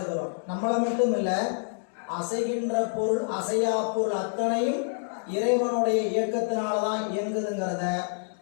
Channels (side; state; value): right; silent; digital silence